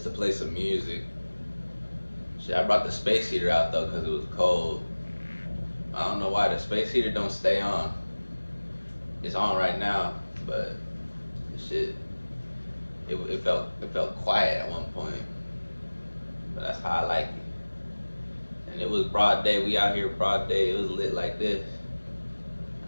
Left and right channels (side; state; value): both; inverted; correlation -1.00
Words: to play some music. Shit, I brought the space heater out though because it was cold. I don't know why the space heater don't stay on. It's on right now, but the shit, it felt quiet at one point. But that's how I like it. And it was broad day. We out here broad day. It was lit like this.